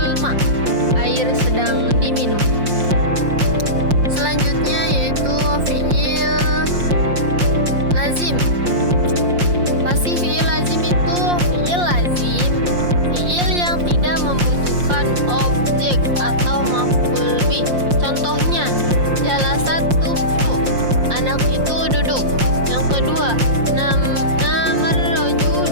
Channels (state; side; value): late; left; 5.7 ms